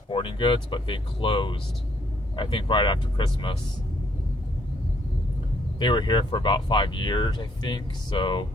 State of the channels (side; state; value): both; normal; correlation 0.69